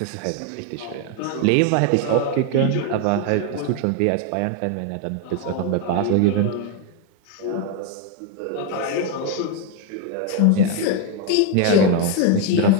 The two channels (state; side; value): different; both; correlation 0.01